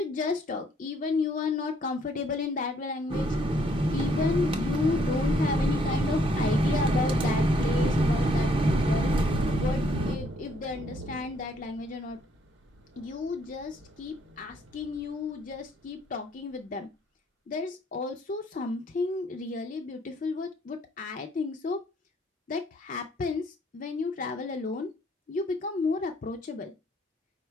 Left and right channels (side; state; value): both; normal; correlation 0.67